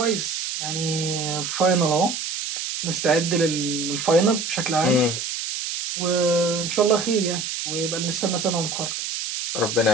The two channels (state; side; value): noise; right; hiss, 4 dB below the sound